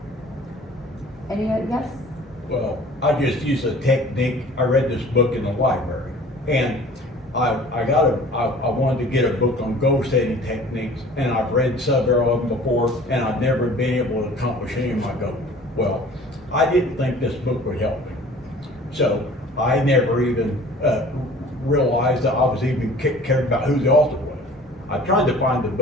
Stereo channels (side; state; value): both; normal; correlation 0.47